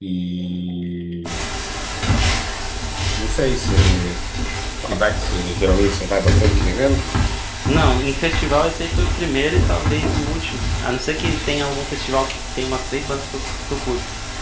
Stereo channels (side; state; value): both; identical; correlation 1.00